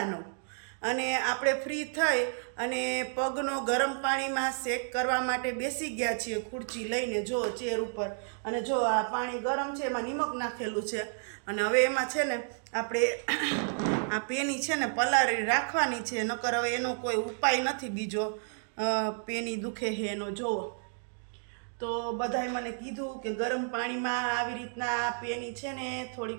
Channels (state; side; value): silent; left; digital silence